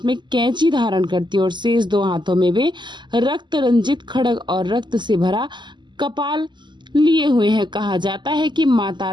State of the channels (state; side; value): late; left; 0.22 ms